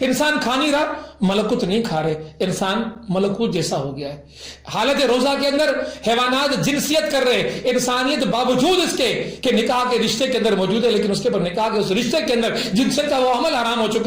انسان کھا نہیں رہا, ملکوت نہیں کھا رہے, انسان ملکوت جیسا ہو گیا ہے. حالت روزہ کے اندر حیوانات جنسیت کر رہے, انسانیت باوجود اس کے کہ نکاح کے رشتے کے اندر موجود ہے لیکن اس کے پر نکاح کے اس رشتے کے اندر جنسیت کا وہ عمل حرام ہو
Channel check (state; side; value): identical; both; correlation 1.00